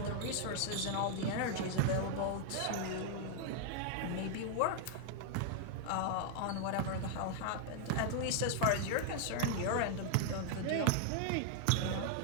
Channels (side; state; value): both; different; correlation 0.00